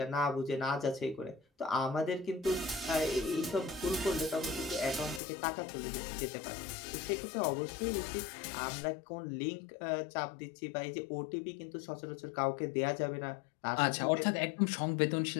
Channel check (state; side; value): drops out; right; at 5.2 s